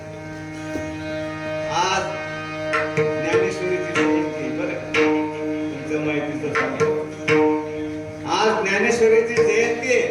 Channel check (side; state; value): both; identical; correlation 1.00